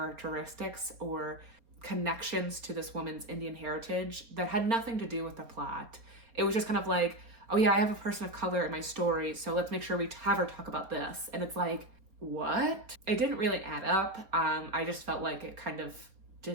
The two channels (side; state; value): left; late; 4.3 ms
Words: or connections to this woman's Indian heritage that had nothing to do with the plot. It was just kind of like, oh yeah, I have a person of color in my story, so let's make sure we have her talk about this. And it's like, what? It didn't really add up. I just felt like it kind of